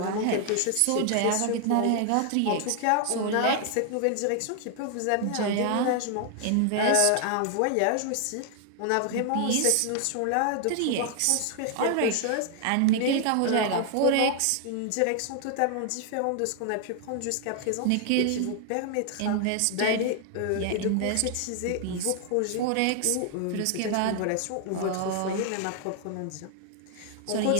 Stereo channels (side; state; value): both; different; correlation 0.00